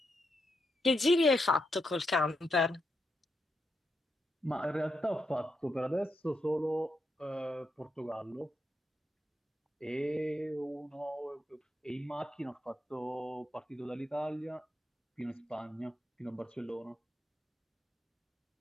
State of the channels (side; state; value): both; normal; correlation 0.83